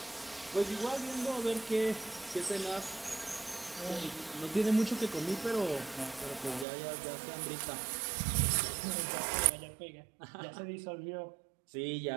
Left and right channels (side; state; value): left; drops out; at 6.7 s